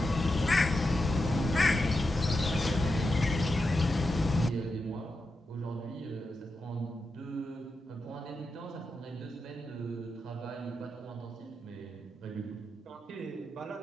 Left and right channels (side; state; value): both; normal; correlation 0.88